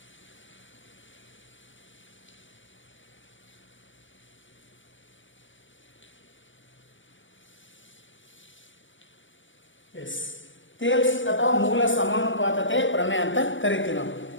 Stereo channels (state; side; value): late; right; 0.56 ms